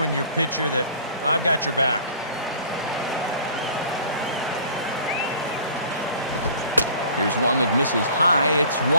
your pitcher that I've got your back. Here's one that misses high. It's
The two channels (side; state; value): both; inverted; correlation -0.47